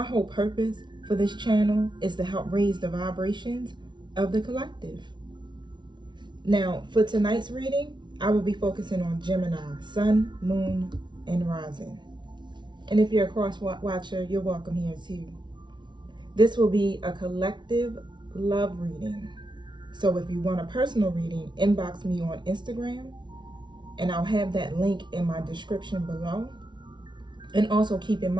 whole purpose for this channel is to help raise the vibrations of the collective. Now, for tonight's reading, I will be focusing on Gemini, Sun, Moon, and Rising. And if you're a cross-watcher, you're welcome here too. This will be a collective love reading. So if you want a personal reading, inbox me on Instagram, and I'll have that link in my description below. And also keep in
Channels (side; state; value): left; late; 0.22 ms